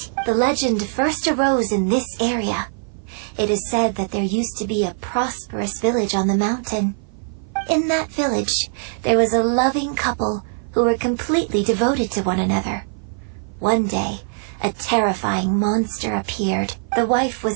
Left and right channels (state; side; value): silent; left; 56 dB below the other